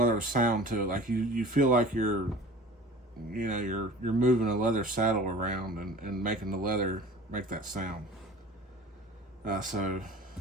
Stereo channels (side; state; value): both; normal; correlation 0.42